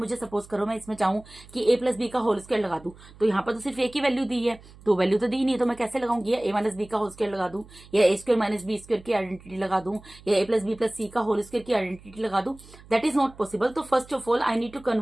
सपोज करो मैं इसमें चाहूँ कि ए प्लस बी का होल स्क्वायर लगा दूं, तो यहाँ पर तो सिर्फ ए की वैल्यू दी है, तो वैल्यू तो दी नहीं है, तो मैं कैसे लगाऊंगी? ए माइनस बी का होल स्क्वायर लगा दूं, या A square minus B square की आइडेंटिटी लगा दूं, या A plus B plus C का होल स्क्वायर की आइडेंटिटी लगा दूं? That is not possible. तो first of all I need to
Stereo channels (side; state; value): right; noise; hum, 22 dB below the sound